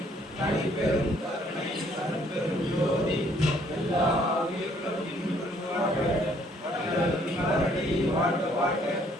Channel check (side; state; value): both; normal; correlation 0.63